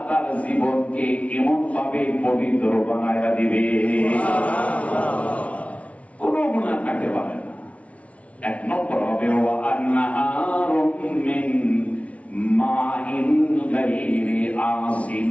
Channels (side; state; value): right; late; 0.065 ms